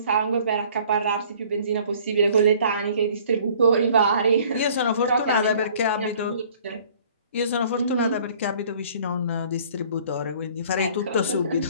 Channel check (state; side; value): inverted; both; correlation -0.54